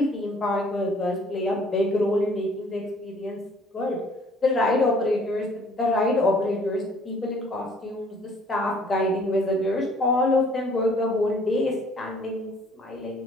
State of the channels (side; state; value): both; normal; correlation 0.57